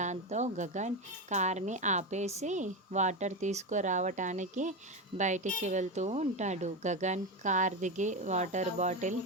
గగన్ కార్ని ఆపేసి వాటర్ తీసుకురావటానికి బయటికి వెళ్తూ ఉంటాడు. గగన్ కార్ దిగి వాటర్ బాటిల్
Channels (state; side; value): normal; both; correlation 0.15